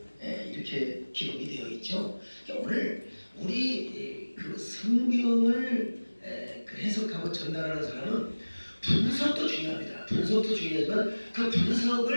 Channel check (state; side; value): inverted; both; correlation -1.00